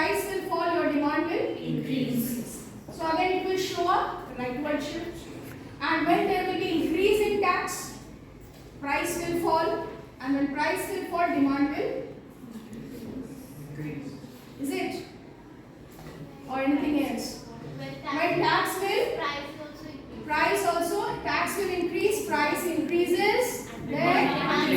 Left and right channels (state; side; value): identical; both; correlation 1.00